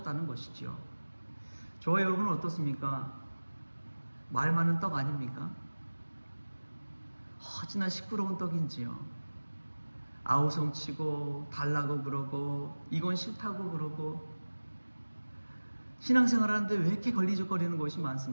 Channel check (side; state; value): both; inverted; correlation -1.00